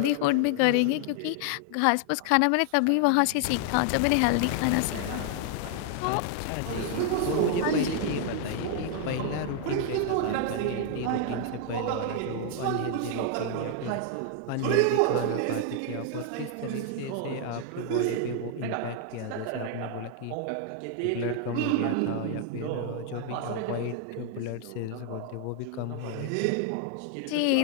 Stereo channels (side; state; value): both; different; correlation 0.00